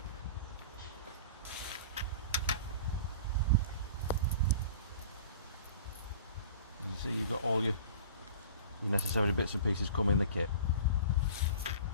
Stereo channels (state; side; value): inverted; both; correlation -0.40